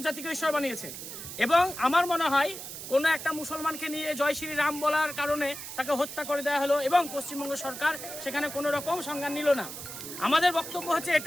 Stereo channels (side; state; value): right; noise; hiss, 10 dB below the sound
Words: ঈশ্বর বানিয়েছে। এবং আমার মনে হয় কোনো একটা মুসলমানকে নিয়ে জয় শ্রী রাম বলার কারণে তাকে হত্যা করে দেওয়া হলো এবং পশ্চিমবঙ্গ সরকার সেখানে কোনো রকম সংজ্ঞান নিল না। আমাদের বক্তব্য হচ্ছে